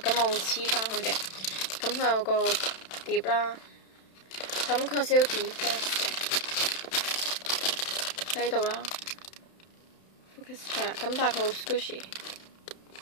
我會黐翻佢嘅。咁佢有個碟啦。咁佢有少少 defect 嘅喺呢度啦 ，Focus 係啦，咁但係佢好 squishy，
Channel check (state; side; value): late; right; 31 ms